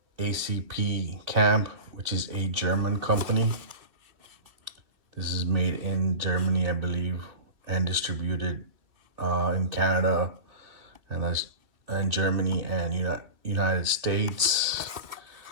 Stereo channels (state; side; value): late; left; 2.8 ms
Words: ACP Camp, which is a German company. This is made in Germany, I believe, and distributed in Canada and Germany and United States.